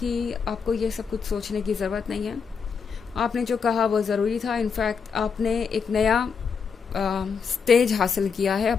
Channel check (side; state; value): right; quieter; 6.0 dB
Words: आपको ये सब कुछ सोचने की ज़रूरत नहीं है। आपने जो कहा वो ज़रूरी था। इनफैक्ट आपने एक नया स्टेज हासिल किया है